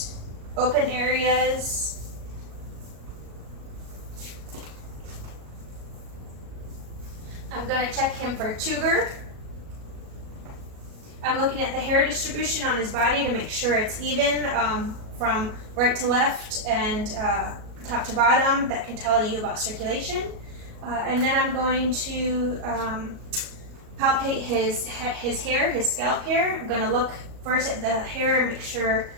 open areas. I'm going to check him for tuber. I'm looking at the hair distribution on his body to make sure it's even from right to left and top to bottom. That can tell you about circulation. And then I'm going to palpate his hair, his scalp hair. I'm going to look first at the hair and make sure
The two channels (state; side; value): late; left; 37 ms